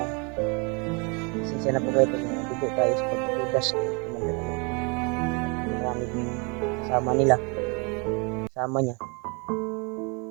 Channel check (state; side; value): quieter; left; 32.1 dB